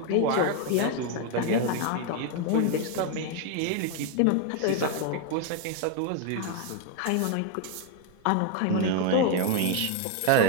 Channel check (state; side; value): different; both; correlation 0.01